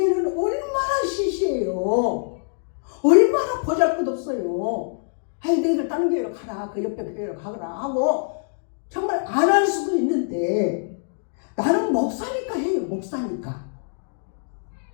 얼마나 시시해요. 얼마나 보잘것없어요. 아이 너희들 다른 교회로 가라. 그 옆에 교회로 가거라 하고 정말 안 할 수도 있는데 나는 목사니까 해요. 목사니까.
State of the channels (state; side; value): silent; right; digital silence